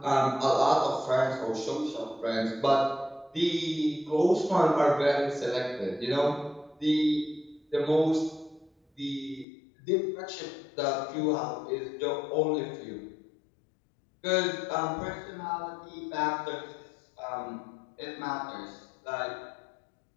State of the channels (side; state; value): right; drops out; at 9.5 s